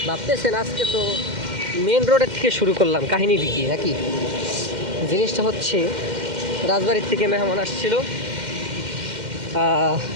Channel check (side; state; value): left; late; 2.1 ms